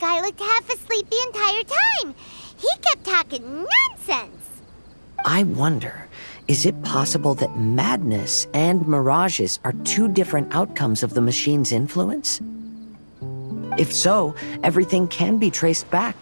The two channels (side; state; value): both; inverted; correlation -1.00